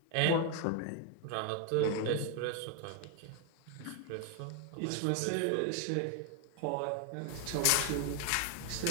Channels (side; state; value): both; different; correlation 0.01